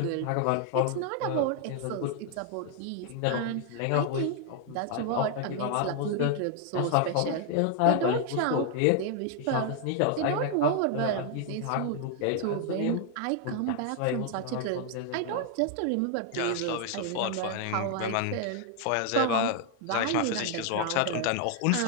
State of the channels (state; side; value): different; both; correlation 0.00